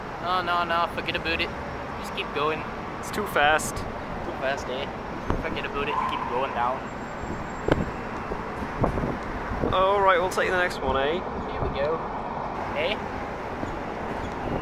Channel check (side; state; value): both; identical; correlation 1.00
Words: No, forget about it. Just keep going. It's too fast. Too fast, eh? Forget about it, keep going down. Alright, we'll take the next one, eh? Here we go. Eh?